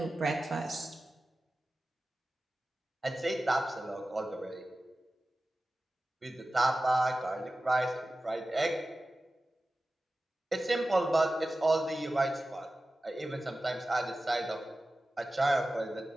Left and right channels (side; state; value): both; normal; correlation 0.95